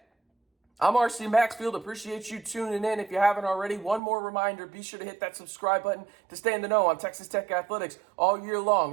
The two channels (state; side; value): drops out; left; at 4.0 s